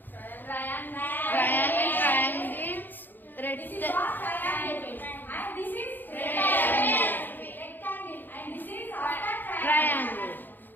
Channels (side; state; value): right; late; 0.090 ms